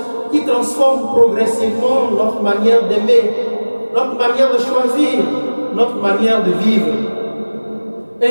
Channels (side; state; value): both; inverted; correlation -1.00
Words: qui transforme progressivement notre manière d'aimer, notre manière de choisir, notre manière de vivre.